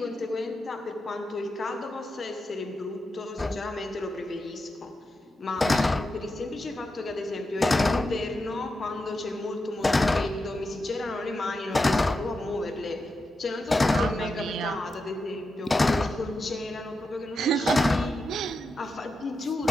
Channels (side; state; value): both; normal; correlation 0.88